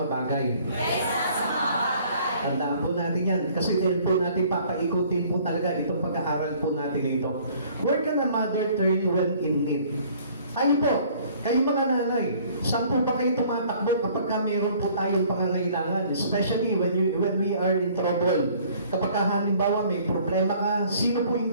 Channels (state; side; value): inverted; both; correlation -0.56